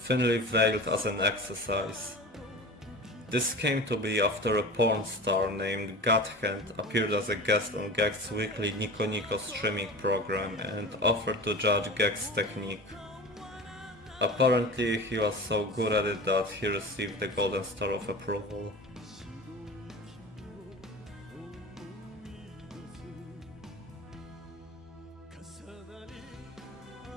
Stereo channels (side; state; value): both; normal; correlation 0.34